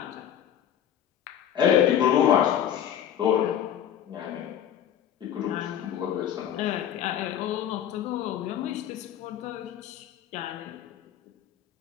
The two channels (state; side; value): quieter; right; 10.0 dB